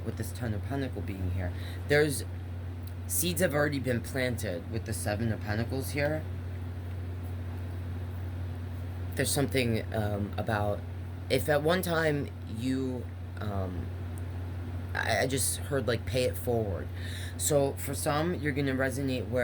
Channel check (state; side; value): identical; both; correlation 1.00